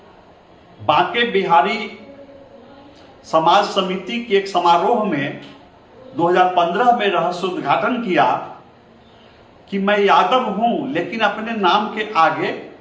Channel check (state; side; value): identical; both; correlation 1.00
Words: बांके बिहारी समाज समिति के एक समारोह में 2015 में रहस्योद्घाटन किया कि मैं यादव हूं, लेकिन अपने नाम के आगे